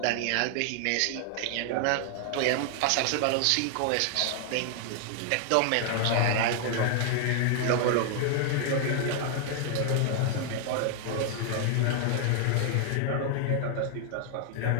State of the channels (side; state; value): both; different; correlation 0.00